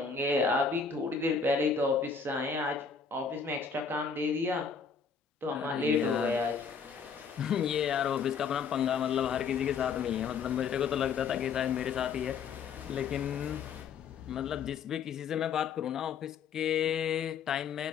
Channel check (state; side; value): quieter; right; 5.9 dB